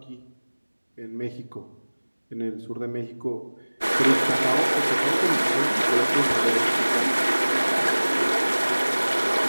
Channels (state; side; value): inverted; both; correlation -1.00